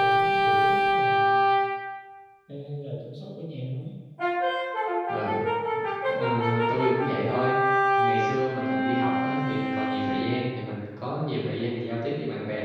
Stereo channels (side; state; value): both; identical; correlation 1.00